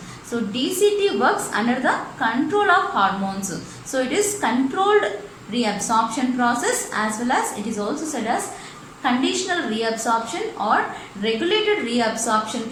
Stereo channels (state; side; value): identical; both; correlation 1.00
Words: So DCT works under the control of hormones. So it is controlled reabsorption process as well as it is also said as conditional reabsorption or regulated reabsorption